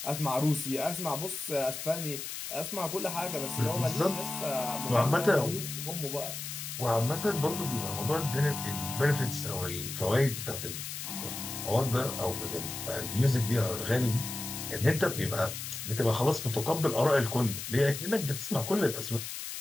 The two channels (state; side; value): noise; left; hiss, 7 dB below the sound